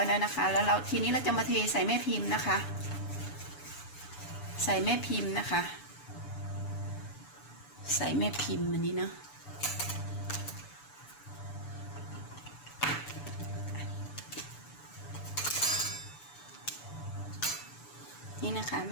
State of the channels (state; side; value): late; right; 6.9 ms